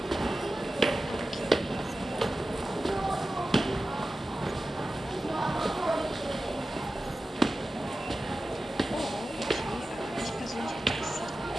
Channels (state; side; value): normal; both; correlation 0.94